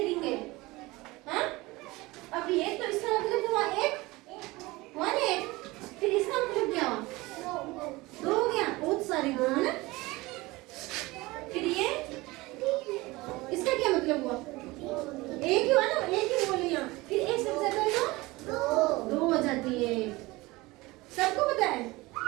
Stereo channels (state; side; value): quieter; left; 21.3 dB